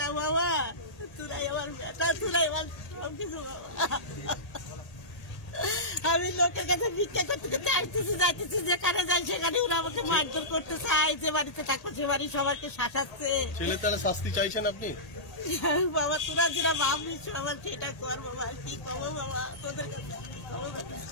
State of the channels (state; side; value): late; right; 1.8 ms